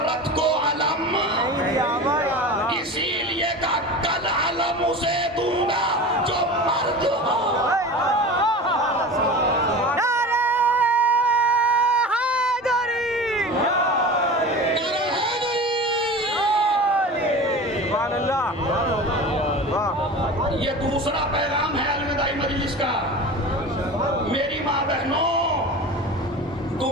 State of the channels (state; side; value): normal; both; correlation 0.33